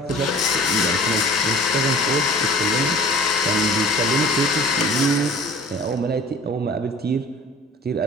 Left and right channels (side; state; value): both; normal; correlation 0.45